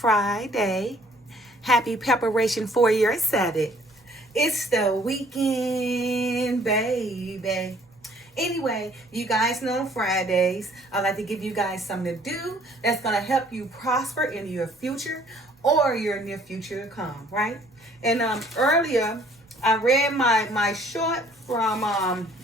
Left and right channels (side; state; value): both; normal; correlation 0.59